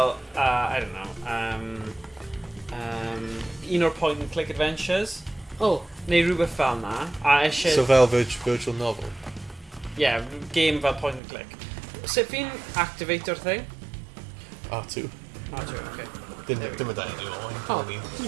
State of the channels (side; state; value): left; drops out; at 11.2 s